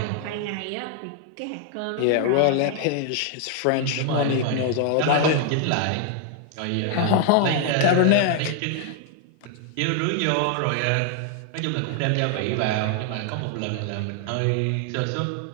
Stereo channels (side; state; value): both; different; correlation 0.00